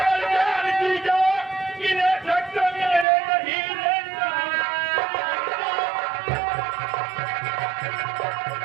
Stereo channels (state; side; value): drops out; left; at 3.1 s